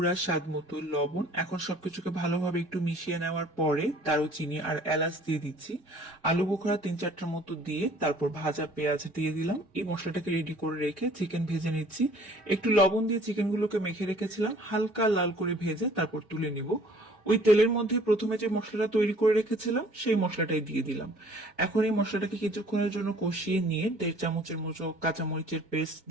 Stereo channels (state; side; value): normal; both; correlation 0.54